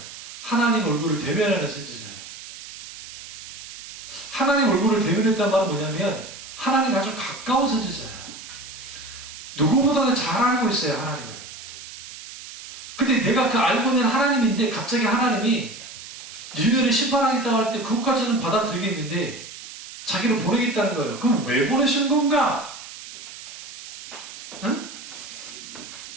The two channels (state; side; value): noise; right; hiss, 13 dB below the sound